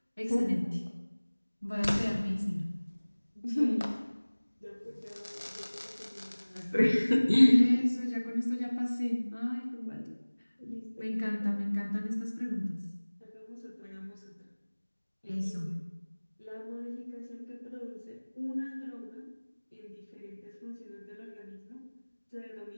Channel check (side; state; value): both; inverted; correlation -1.00